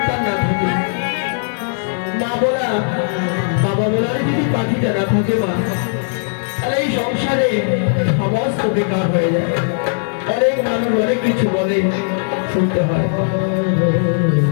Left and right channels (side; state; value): right; silent; 65 dB below the other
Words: না থাকে, মা বলা বাবা বলার যদি পাখিটা না থাকে মা, তাহলে এই সংসারে সমস্ত বেকার হয়ে যায়। অনেক মানুষ অনেক কিছু বলে, শুনতে হয়।